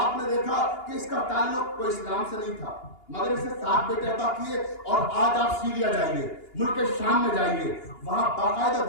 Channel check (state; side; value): late; right; 2.8 ms